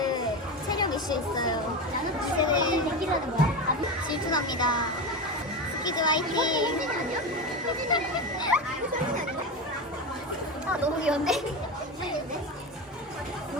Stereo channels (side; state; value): both; normal; correlation 0.20